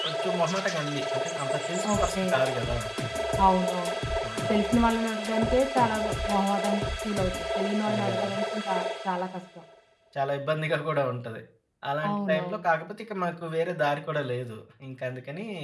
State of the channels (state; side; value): identical; both; correlation 1.00